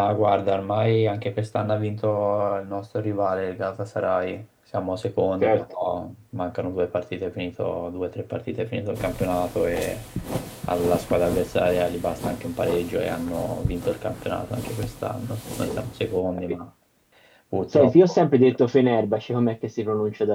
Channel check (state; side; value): identical; both; correlation 1.00